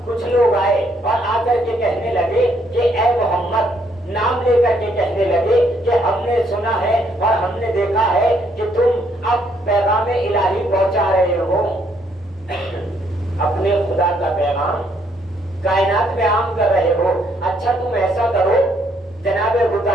کچھ لوگ آئے اور آ کر کے کہنے لگے کہ اے محمد، نام لے کر کے کہنے لگے کہ ہم نے سنا ہے اور ہم نے دیکھا ہے کہ تم اب پیغام الہی پہنچا رہے ہو، اپنے خدا کا پیغام کائنات میں عام کر رہے ہو۔ اچھا تم ایسا کرو، جناب ابو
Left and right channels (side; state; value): both; normal; correlation 0.70